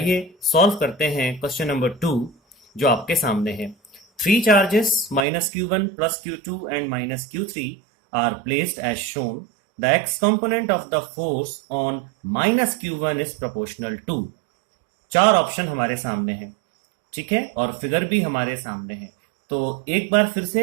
सॉल्व करते हैं क्वेश्चन नंबर 2 जो आपके सामने है। Three charges minus q1 plus q2 and minus q3 are placed as shown. The x component of the force on minus q1 is proportional to। चार ऑप्शन हमारे सामने हैं, ठीक है, और फिगर भी हमारे सामने है। तो एक बार फिर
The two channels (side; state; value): left; drops out; at 5.2 s